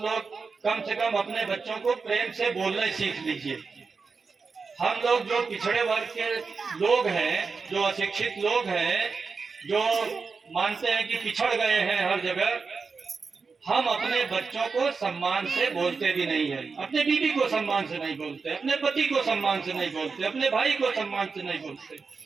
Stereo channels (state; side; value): quieter; left; 4.8 dB